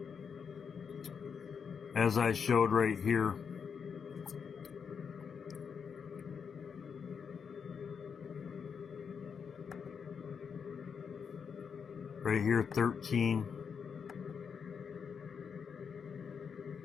As I showed right here. Right here, 13.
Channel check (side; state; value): right; quieter; 6.5 dB